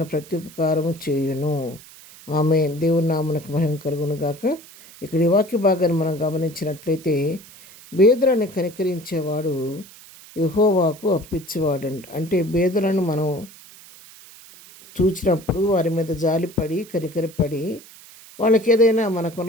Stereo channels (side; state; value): right; noise; hiss, 20 dB below the sound